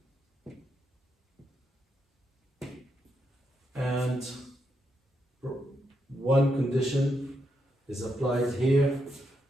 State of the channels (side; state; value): both; normal; correlation 0.81